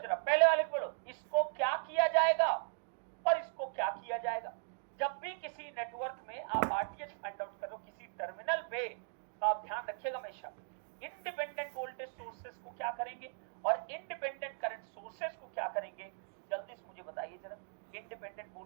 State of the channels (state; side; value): silent; left; digital silence